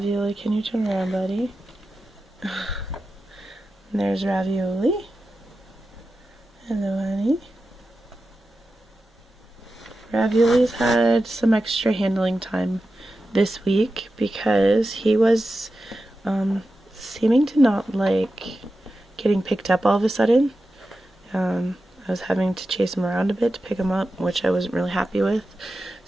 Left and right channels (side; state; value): both; normal; correlation 0.92